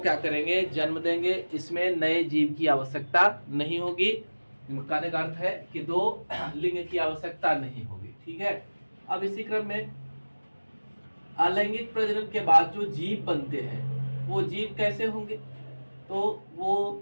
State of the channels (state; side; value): inverted; both; correlation -1.00